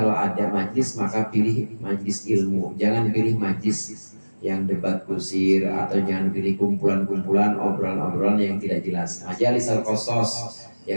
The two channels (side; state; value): both; inverted; correlation -1.00